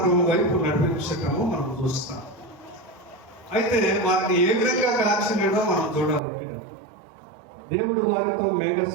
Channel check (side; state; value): left; drops out; at 6.2 s